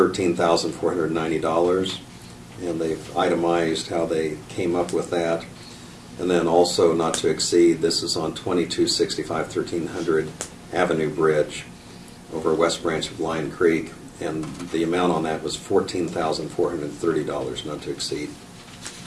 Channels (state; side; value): identical; both; correlation 1.00